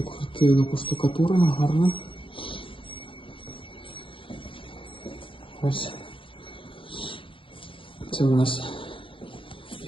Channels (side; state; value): right; late; 0.25 ms